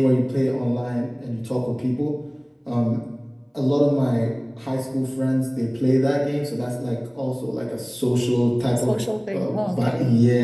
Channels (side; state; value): both; identical; correlation 1.00